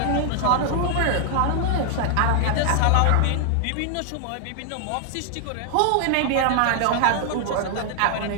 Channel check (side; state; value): both; different; correlation 0.00